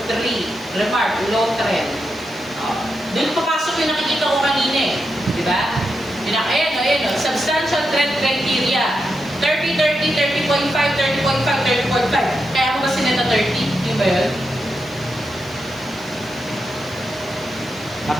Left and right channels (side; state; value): right; noise; hiss, 26 dB below the sound